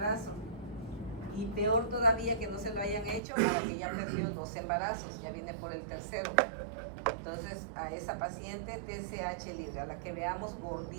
y peor todavía que no se lo hayan hecho, que ya perdió 2 embarazos, ya viene por el tercero. Entonces a esa paciente TSH libre, a la que veamos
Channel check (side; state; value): left; drops out; at 3.2 s